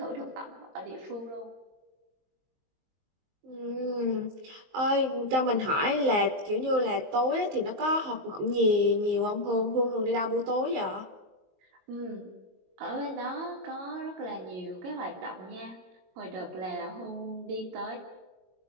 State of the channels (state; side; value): late; left; 22 ms